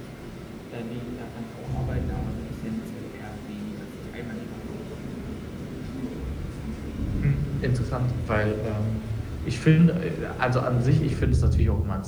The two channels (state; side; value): identical; both; correlation 1.00